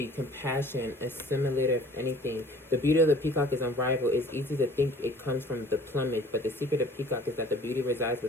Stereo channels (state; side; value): normal; both; correlation 0.50